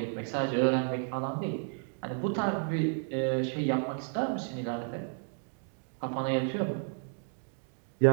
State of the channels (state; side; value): silent; left; 56 dB below the other